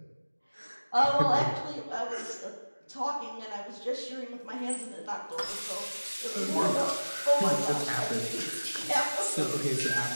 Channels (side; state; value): both; inverted; correlation -1.00